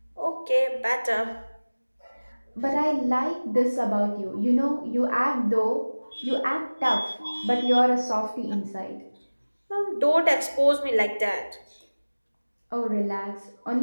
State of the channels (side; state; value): both; inverted; correlation -1.00